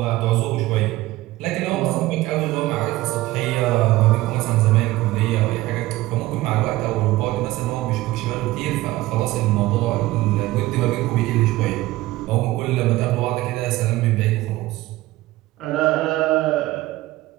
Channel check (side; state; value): left; quieter; 17.7 dB